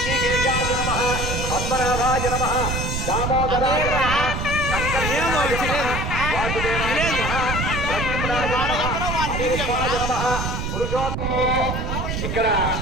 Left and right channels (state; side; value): noise; right; rumble, 2 dB below the sound